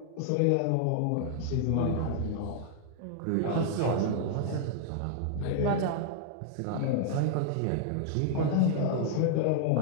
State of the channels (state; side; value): different; both; correlation 0.00